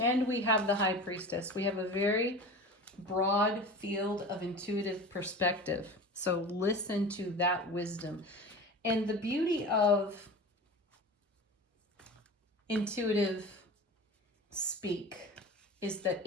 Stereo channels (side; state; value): both; normal; correlation 0.34